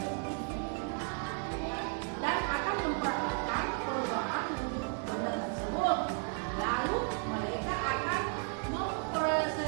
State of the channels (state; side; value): quieter; left; 39.7 dB